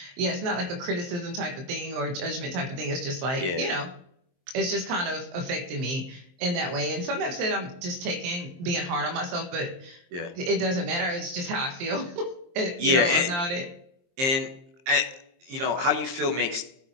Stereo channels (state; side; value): late; left; 23 ms